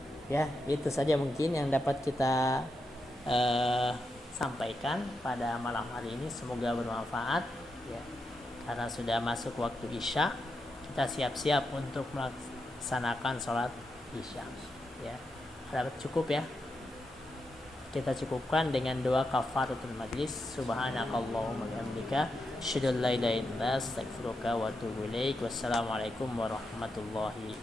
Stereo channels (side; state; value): both; normal; correlation 0.85